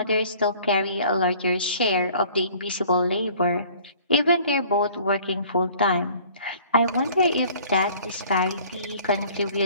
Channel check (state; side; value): inverted; both; correlation -0.52